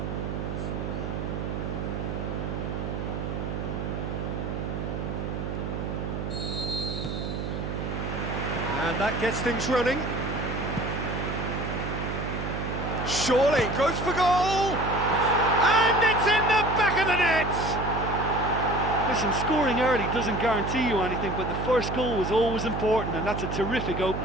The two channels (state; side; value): noise; right; hum, 4 dB below the sound